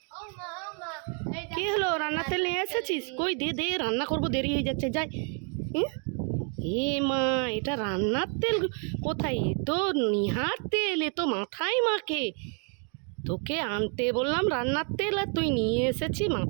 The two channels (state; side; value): quieter; left; 39.9 dB